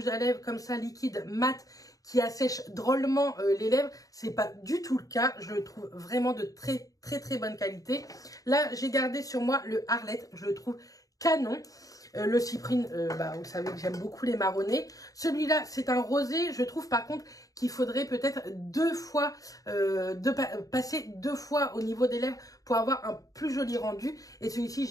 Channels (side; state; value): right; late; 0.17 ms